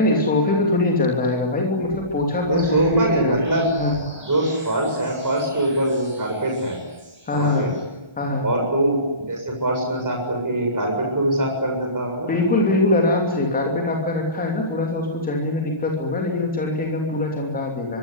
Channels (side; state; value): both; inverted; correlation -0.33